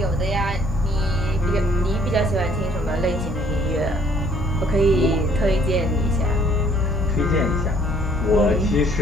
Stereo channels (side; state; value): both; normal; correlation 0.62